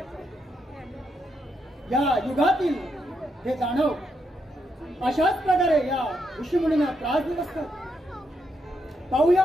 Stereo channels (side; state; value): both; normal; correlation 0.80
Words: या युगातील हे जाणव. अशाच प्रकारे या ऋषीमुनींना त्रास देत असतात. पाहूया